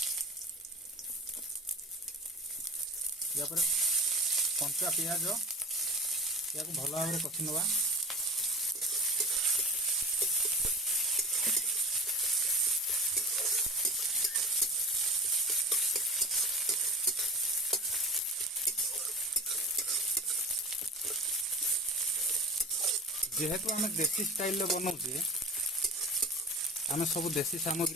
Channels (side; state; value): both; normal; correlation 0.35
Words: या पर कंचा पियाज या को भल भाव कषि नवा। जेहेतु आम देसी स्टाइल बनाऊे आम सब देसी